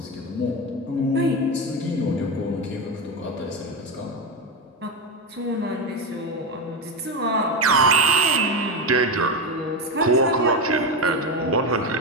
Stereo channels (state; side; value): normal; both; correlation 0.14